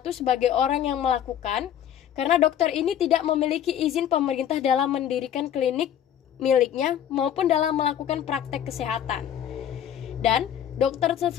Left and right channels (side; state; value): right; quieter; 10.0 dB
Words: sebagai orang yang melakukan, karena dokter ini tidak memiliki izin pemerintah dalam mendirikan klinik miliknya maupun dalam melakukan praktek kesehatan. Dan dokter